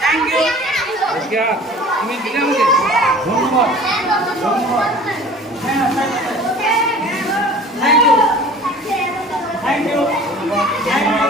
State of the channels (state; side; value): normal; both; correlation 0.45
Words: তুমি দিলে আমাকে ধন্যবাদ ধন্যবাদ thank you thank you